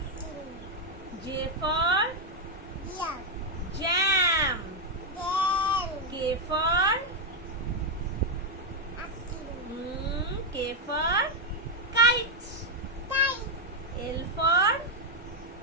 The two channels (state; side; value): normal; both; correlation 0.02